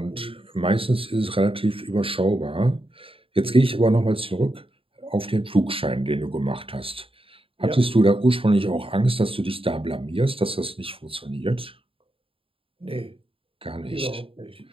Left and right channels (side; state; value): left; late; 0.27 ms